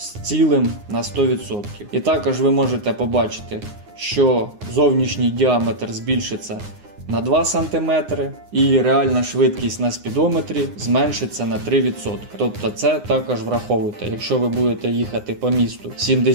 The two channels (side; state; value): left; late; 9.7 ms